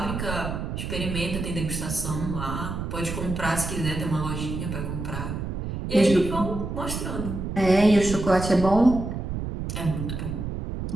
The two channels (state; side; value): noise; right; rumble, 5 dB below the sound